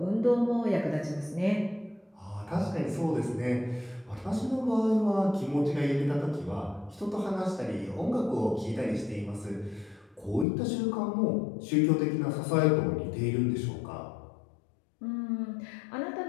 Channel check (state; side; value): drops out; right; at 10.5 s